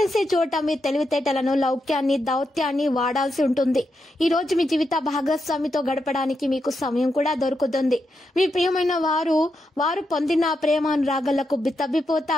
చోట మీ తెలివితేటలను, లౌక్యాన్ని, దౌత్యాన్ని వాడాల్సి ఉంటుంది. ఈ రోజు మీ జీవిత భాగస్వామితో గడపడానికి మీకు సమయం కూడా దొరుకుతుంది. మీ ప్రియమైన వారు పొందిన ప్రేమానురాగాలకు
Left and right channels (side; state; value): both; normal; correlation 0.84